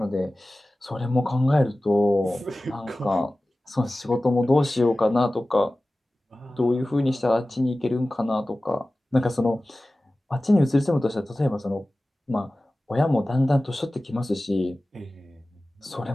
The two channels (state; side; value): normal; both; correlation 0.96